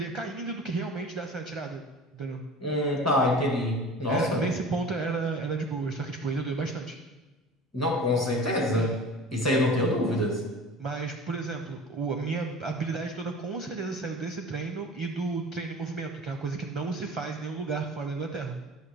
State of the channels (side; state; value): both; normal; correlation 0.39